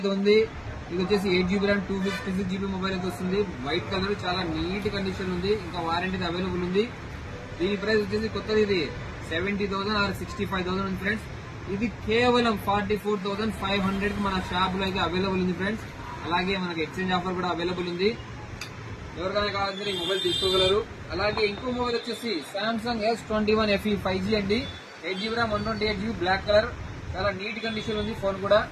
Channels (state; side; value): identical; both; correlation 1.00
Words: ఉంది. ఇది వచ్చేసి 8GB ర్యామ్ 256GB మొబైల్ అయితే వస్తుంది. వైట్ కలర్, చాలా నీట్ కండిషన్ ఉంది. ఇంకా వారంటీ అవైలబుల్ ఉంది. దీని ప్రైస్ వచ్చేసి కొత్తది ఇది 70,000 ఆర్ 65,000 ఉంది ఫ్రెండ్స్. ఇది కేవలం 44,500 కి మన షాప్ లో అయితే అవైలబుల్ ఉంది ఫ్రెండ్స్. అలాగే మనకి ఎక్స్చేంజ్ ఆఫర్ కూడా అవైలబుల్ ఉంది. ఎవరికైనా కావాలంటే ఈ మొబైల్ తీసుకోగలరు. అలాగే ఇంకో మొబైల్ వచ్చేసి సామ్సంగ్ S21 FE 5G అండి. 8GB RAM 128GB black colour, చాలా నీట్ కండిషన్ ఉంది ఫోన్ కూడా.